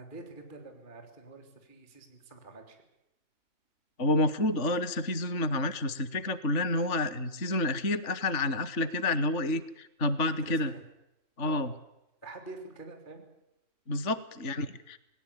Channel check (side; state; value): right; late; 3.4 ms